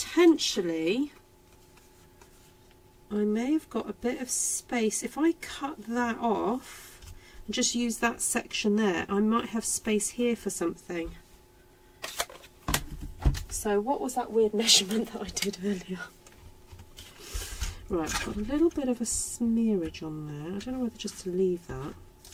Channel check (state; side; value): identical; both; correlation 1.00